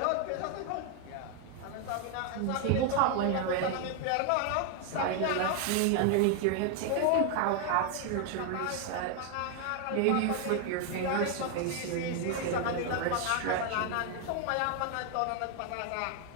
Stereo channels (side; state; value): both; different; correlation 0.01